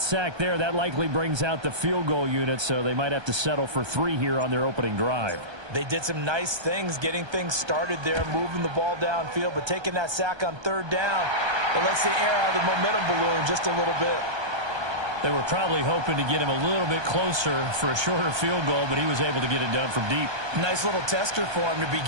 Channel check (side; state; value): left; late; 1.2 ms